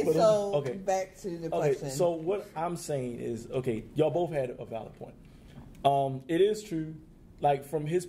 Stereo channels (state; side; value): identical; both; correlation 1.00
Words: But, so okay. back to the Okay, question. so what I'm saying is, okay, y'all both had a valid point. It is true, like from his